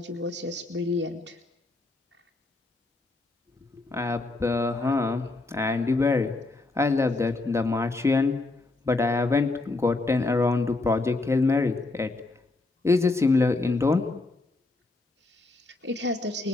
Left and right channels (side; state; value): right; quieter; 3.2 dB